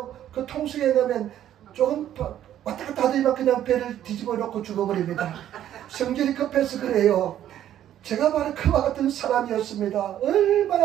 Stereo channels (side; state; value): left; quieter; 11.4 dB